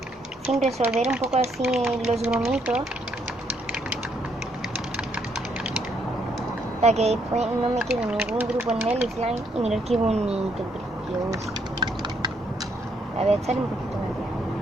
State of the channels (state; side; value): normal; both; correlation 0.72